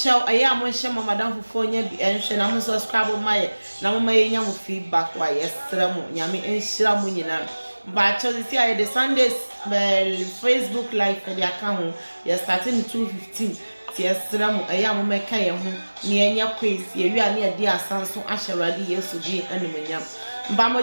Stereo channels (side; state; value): both; inverted; correlation -1.00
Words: aya mo hye mo madam fofo nya bi enhwe na mo subscribe ma ye na mo ma ye nya mo feedback wa yesra mo. Nyame enhyira mu nyina. But see I the Sundays Facebook live for the account. You're starting 2:15. Yesra mo aya mo meka ye ho ne anya quiz ye wi ane ade asanso ahyewrade Yesu di animonyam mba mo